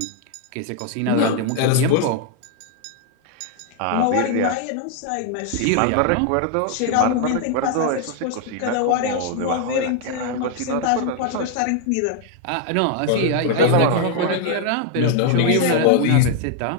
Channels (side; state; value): both; different; correlation 0.00